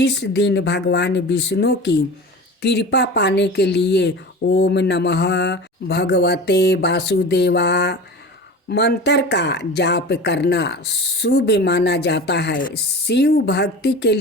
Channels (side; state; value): both; normal; correlation 0.34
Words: दिन भगवान विष्णु की कृपा पाने के लिए ओम नमः भगवते वासुदेवा मंत्र का जाप करना शुभ माना जाता है। शिव भक्ति के